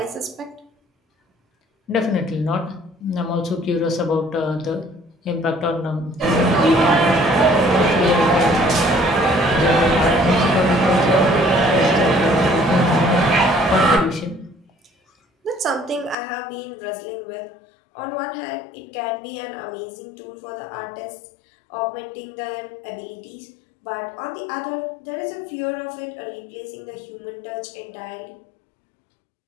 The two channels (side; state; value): right; drops out; at 16.2 s